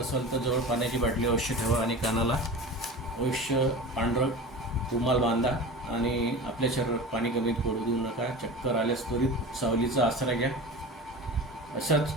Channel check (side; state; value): both; normal; correlation 0.32